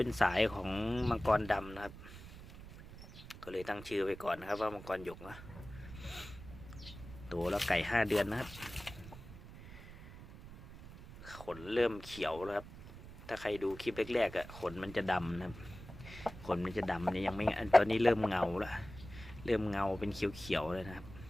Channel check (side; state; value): right; noise; rumble, 15 dB below the sound